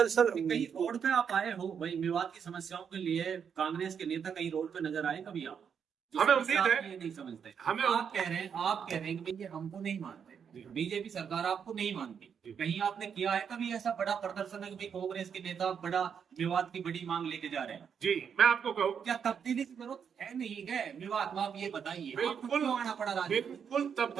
सर कहीं रोड पे आप आए हो भाई मेवात की समस्याओं के लिए, कांग्रेस के नेता कहीं रोड पे नजर आए कभी आप? हमें उम्मीद है, ये नहीं समझते। हमें आप कह रहे हैं कि ये हमको नहीं मानते, बीजेपी सरकार आपको नहीं मानती, कहीं आपने किया है कभी ऐसा बड़ा प्रदर्शन है कि कांग्रेस के नेता बड़ा मेवात की बड़ी मांग लेके जा रहे हैं? जी मैं आपको कहूँ, क्या तब्दीली की जरूरत है नहीं है मेवात में? आप ये बताइए, बिल्कुल आना पड़ा राजनीति? बिल्कुल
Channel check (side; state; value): left; quieter; 7.3 dB